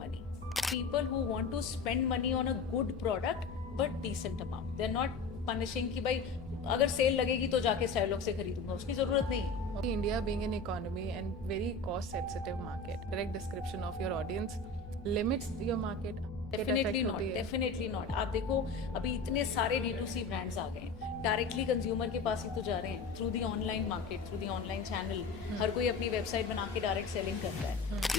People who want to spend money on a good product, but decent amount. They're not punishing कि भाई अगर cell लगेगी तो जाके स्टाइलॉक्स से खरीदूंगा, उसकी ज़रूरत नहीं है. India being an economy and very cost sensitive market, direct description of your audience limits your market. Definitely not, definitely not. आप देखो अभी इतने सारे D2C ब्रांड्स आ गए हैं, डायरेक्टली कंज्यूमर के पास ही तो जा रहे हैं through the online market, through the online channel. हर कोई अपनी वेबसाइट बना के डायरेक्ट सेलिंग करता है.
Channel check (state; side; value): quieter; right; 3.9 dB